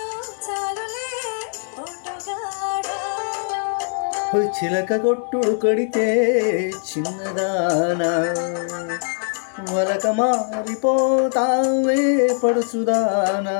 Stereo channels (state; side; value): silent; right; digital silence